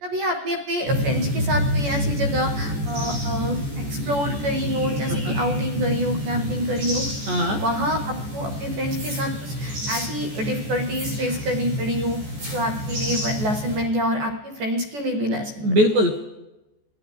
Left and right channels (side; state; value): left; late; 14 ms